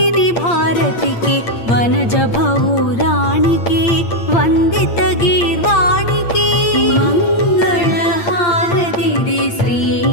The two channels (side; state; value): right; late; 8.7 ms